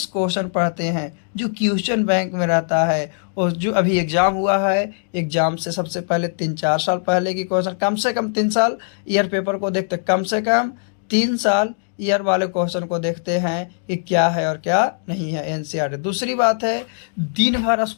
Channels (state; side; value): silent; right; digital silence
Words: क्वेश्चन पढ़ते हैं जो क्वेश्चन बैंक में रहता है। और जो अभी एग्ज़ाम हुआ है, एग्ज़ाम से सबसे पहले 3-4 साल पहले की क्वेश्चन, कम से कम 3 साल ईयर पेपर को देखते, कम से कम 3 साल ईयर वाले क्वेश्चन को देखते हैं कि क्या है और क्या नहीं है एनसीईआरटी। दूसरी बात है, दिन भर